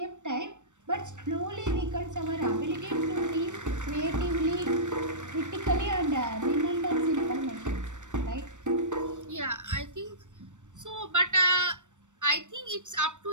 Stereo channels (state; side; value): late; left; 0.85 ms